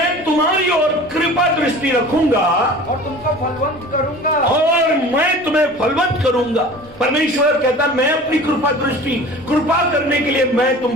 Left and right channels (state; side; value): normal; both; correlation 0.41